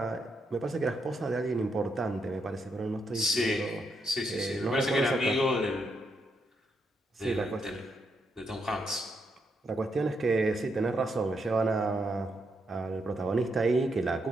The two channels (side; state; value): both; normal; correlation 0.79